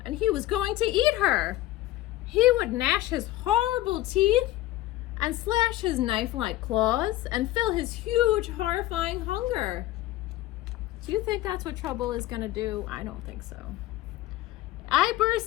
and he was going to eat her. He would gnash his horrible teeth and slash his knife-like claws and fill his huge, horrifying hunger. Do you think that's what Trouble is gonna do? I don't think so. I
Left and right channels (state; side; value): quieter; right; 15.8 dB